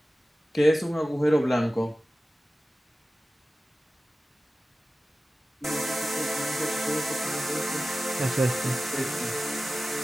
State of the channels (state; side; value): normal; both; correlation 0.96